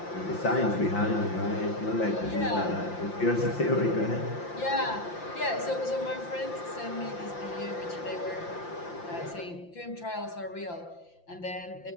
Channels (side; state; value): right; late; 5.8 ms